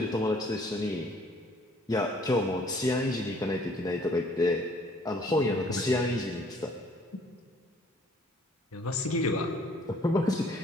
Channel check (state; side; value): normal; both; correlation 0.59